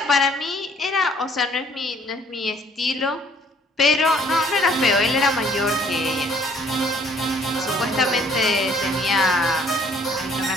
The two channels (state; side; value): normal; both; correlation 0.60